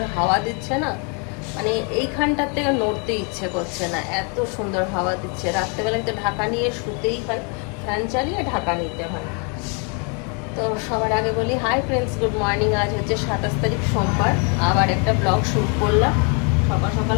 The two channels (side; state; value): right; quieter; 36.7 dB